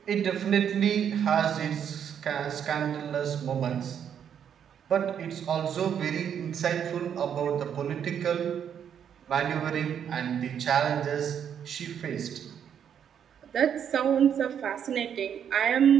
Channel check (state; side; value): quieter; left; 8.5 dB